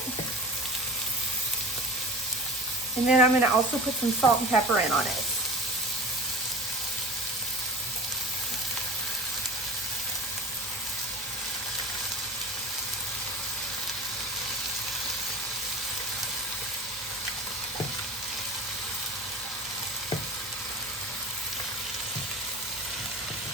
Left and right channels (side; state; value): both; normal; correlation 0.35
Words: And then I'm going to also put some salt and pepper in on it.